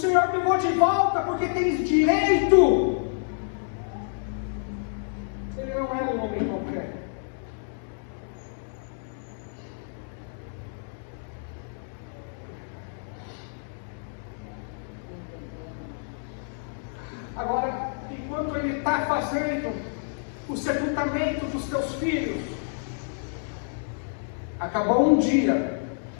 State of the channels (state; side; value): silent; right; 59 dB below the other